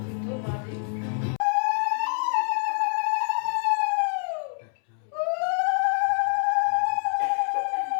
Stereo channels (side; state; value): right; silent; 61 dB below the other